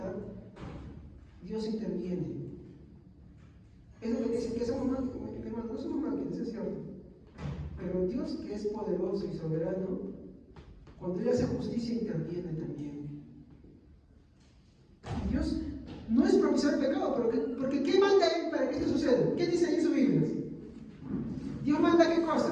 Dios interviene. Es lo que dicen que somos máquinas, hermanos, no somos máquinas, es cierto. Pero Dios, que es poderoso y soberano, cuando Él hace justicia, interviene también. Dios no es propiciar el pecado, porque ¿qué manda Él para que esto suceda? ¿Qué dice ahí en su Biblia? Dios manda ¿qué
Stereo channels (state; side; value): identical; both; correlation 1.00